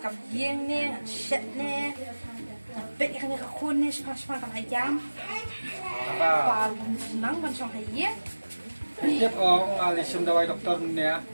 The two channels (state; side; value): inverted; both; correlation -1.00